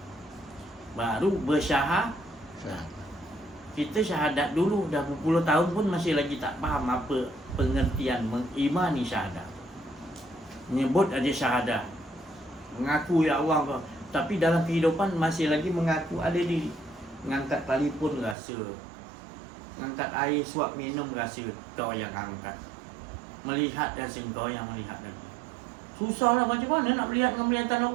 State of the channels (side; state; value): left; drops out; at 18.4 s